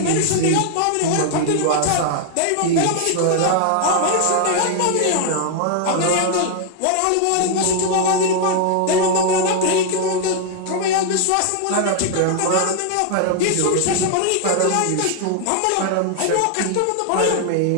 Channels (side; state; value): both; different; correlation 0.00